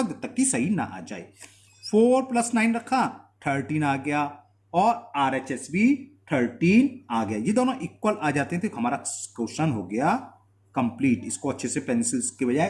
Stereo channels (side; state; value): both; identical; correlation 1.00